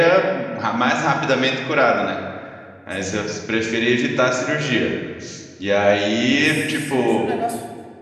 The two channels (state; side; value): identical; both; correlation 1.00